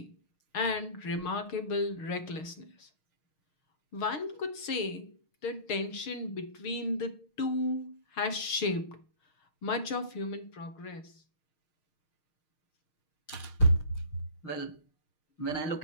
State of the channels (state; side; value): late; right; 6.5 ms